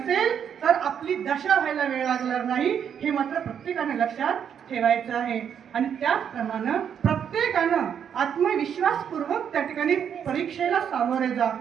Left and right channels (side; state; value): left; quieter; 8.2 dB